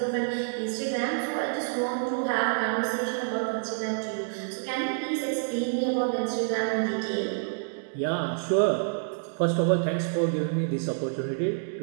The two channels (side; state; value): left; silent; digital silence